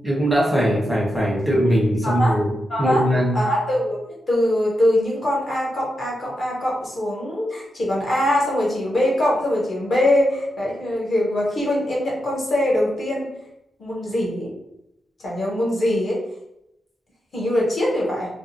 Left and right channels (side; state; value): both; normal; correlation 0.87